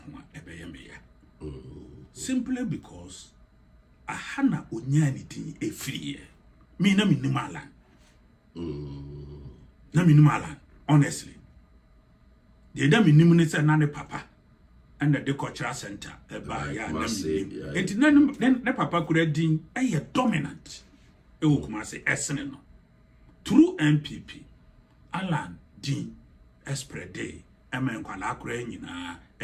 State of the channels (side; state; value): both; identical; correlation 1.00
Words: Ebeyamea. Simply because a Hana Unyanity a free. Me na minimalan. Na minimalan, honestly. The dame minister nane papa and the cultural center by ya then the papa could din a dominant e wo kuma say esene no through MPP Alan din esprede emen kwala akura nyina